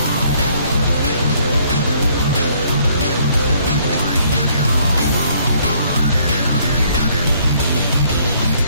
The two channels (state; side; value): inverted; both; correlation -0.64